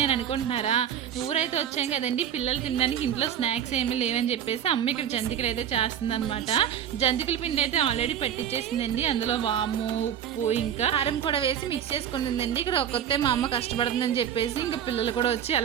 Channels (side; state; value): left; quieter; 9.4 dB